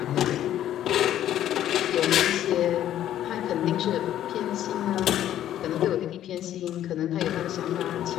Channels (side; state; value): right; quieter; 11.7 dB